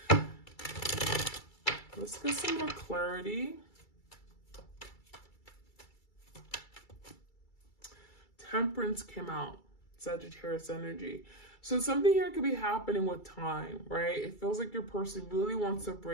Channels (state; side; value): late; right; 2.3 ms